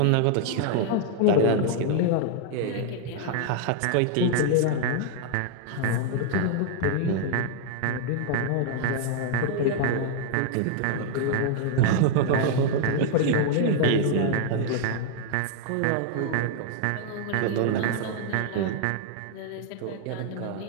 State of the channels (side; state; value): both; different; correlation 0.00